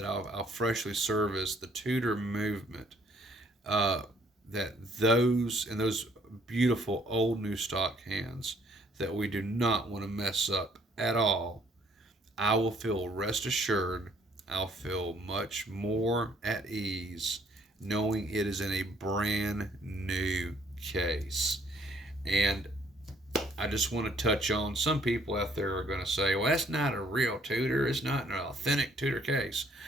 I'll freshly service, the Tudor movement, that those beautiful old new stock hands that we do not want to mess up at all, I will feel, rest assured, I'll feel much more at ease knowing it is in a brand new case. And I just want to touch on, some people out there are going to say, well, that's not a real Tudor. It's not an authentic Tudor case.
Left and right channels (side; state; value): both; normal; correlation 0.64